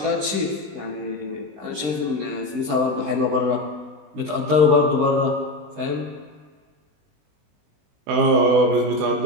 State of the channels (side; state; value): left; late; 20 ms